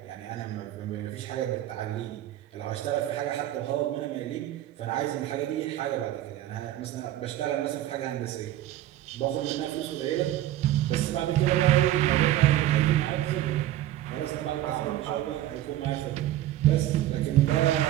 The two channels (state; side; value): quieter; left; 13.5 dB